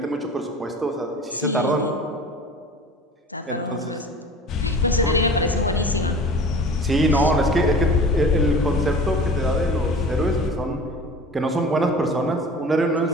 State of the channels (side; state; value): both; normal; correlation 0.41